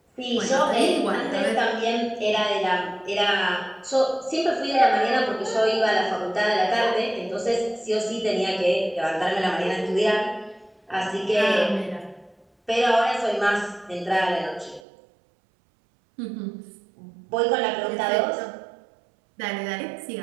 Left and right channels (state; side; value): drops out; left; at 14.8 s